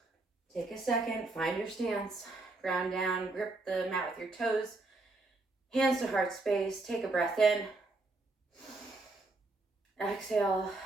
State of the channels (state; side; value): quieter; left; 3.2 dB